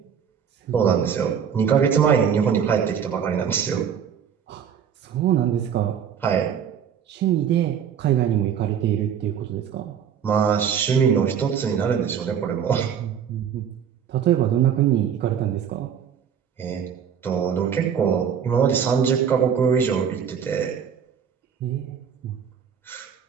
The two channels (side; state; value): left; quieter; 8.0 dB